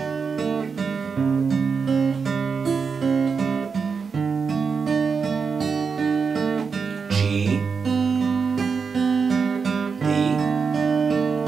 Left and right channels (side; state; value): left; quieter; 5.5 dB